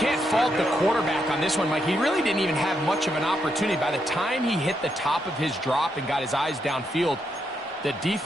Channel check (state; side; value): normal; both; correlation 0.80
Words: fault the quarterback on this one, Mike. He really didn't even have much of an opportunity. By the time he hit the top of his drop and got his eyes downfield, the